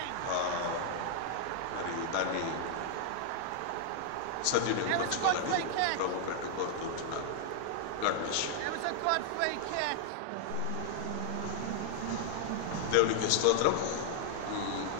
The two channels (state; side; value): different; both; correlation -0.01